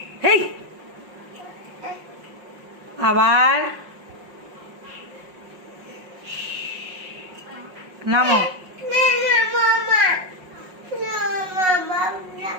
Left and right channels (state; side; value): late; left; 5.5 ms